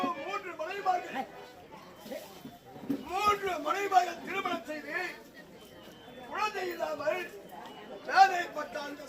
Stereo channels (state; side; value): identical; both; correlation 1.00